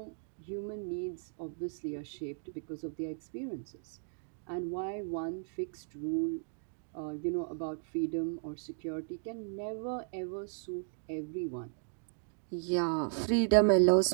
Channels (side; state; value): left; silent; digital silence